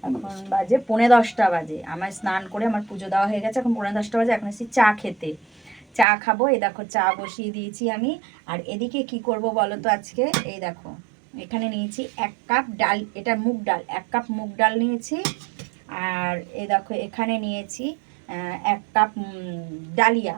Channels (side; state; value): left; drops out; at 6.1 s